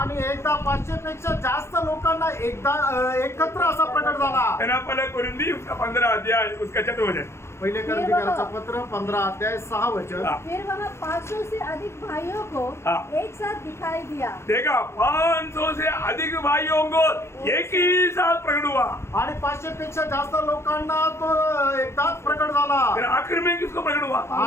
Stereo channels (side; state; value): right; late; 0.13 ms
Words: एकदा 500 पेक्षा जास्त लोकांना एकदा एकत्र असा प्रकट झाला। है ना, पहले कोरिन्थी उसका 15 अध्याय उसका 4 वचन। पहिले कोरिन्थीकरांचं पत्र 15 अध्याय 6 वचन। फिर वहाँ 500 से अधिक भाइयों को हाँ। एक साथ दिखाई दिया। देखा, 500 से अधिक भाइयों को एक ही साथ प्रकट हुआ। आणि 500 पेक्षा जास्त लोकांना तो एकदाच प्रकट झाला। फिर आखिर में किसको प्रकट हुआ?